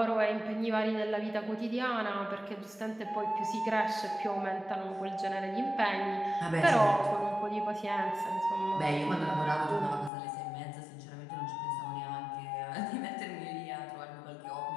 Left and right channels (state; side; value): drops out; right; at 10.1 s